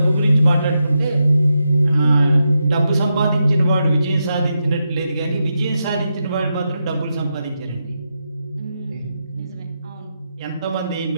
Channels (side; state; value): both; inverted; correlation -0.86